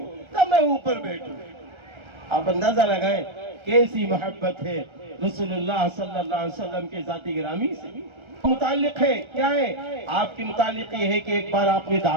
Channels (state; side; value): late; left; 1.3 ms